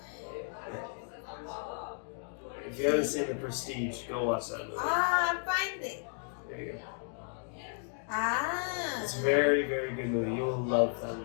If you haven't seen The Prestige, go watch that movie. Ah, find it. There you go. Ah. It's a very, very good movie. You will love that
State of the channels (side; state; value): right; silent; 55 dB below the other